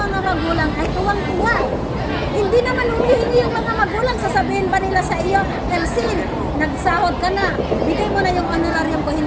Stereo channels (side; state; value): both; identical; correlation 1.00